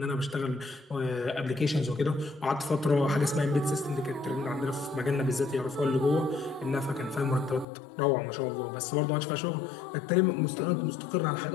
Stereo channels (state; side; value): drops out; right; at 7.7 s